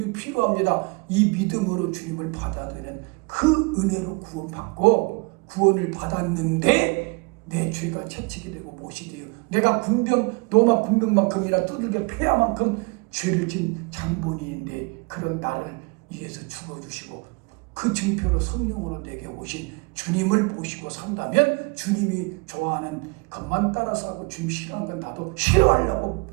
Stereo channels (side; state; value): left; quieter; 30.3 dB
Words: 필요합니다. 이 믿음으로 주님을 받아들이는 그 은혜로 구원받고 구원을 받았는데 내 죄가 채찍이 되고 못이 돼요. 내가 로마 군병만큼이나 두들겨 패야만큼 죄를 진 장본인인데 그런 나를 위해서 죽어주시고 그 증표로 성령으로 내게 오신 주님을 보시고 산다면 주님이 좋아하는 것만 따라서 하고 주님 싫어하는 건 나도 싫어하려고